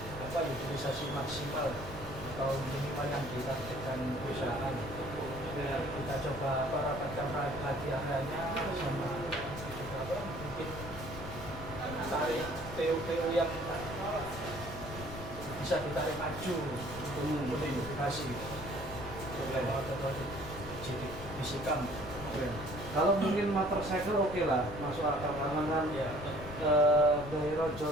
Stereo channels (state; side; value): noise; left; rumble, 11 dB below the sound